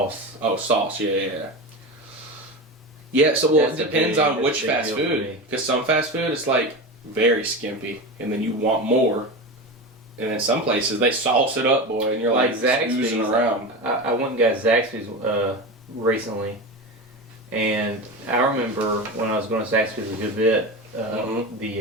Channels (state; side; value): normal; both; correlation 0.24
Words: Oh, sauce. Yeah. Yeah, so it depends on which fast food. Because some fast food is very skimpy, and then you want more. And then some places they sauce it up, boy, and you're oozing around. I went and got Zaxby's recently, and I remember when I was going to Zaxby's a good bit.